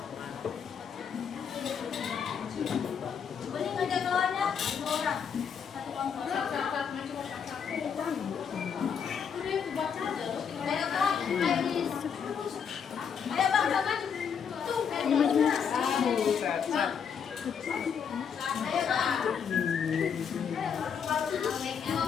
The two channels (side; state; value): right; quieter; 7.1 dB